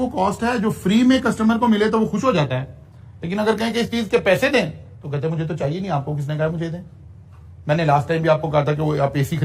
कॉस्ट है जो फ्री में कस्टमर को मिले तो वो खुश हो जाता है, लेकिन अगर कहें कि इस चीज के पैसे दें तो कहते हैं मुझे तो चाहिए नहीं, आपको किसने कहा मुझे दें। मैंने लास्ट टाइम भी आपको कहा था कि वो आप AC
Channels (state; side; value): identical; both; correlation 1.00